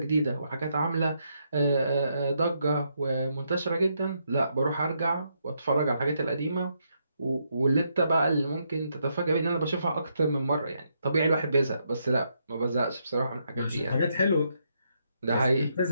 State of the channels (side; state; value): both; inverted; correlation -0.78